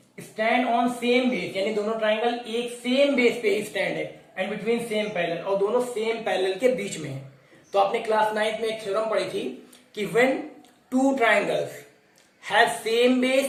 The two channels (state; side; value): identical; both; correlation 1.00